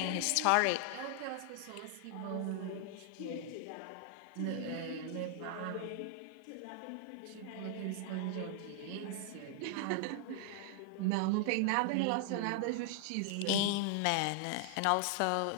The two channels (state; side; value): different; both; correlation 0.00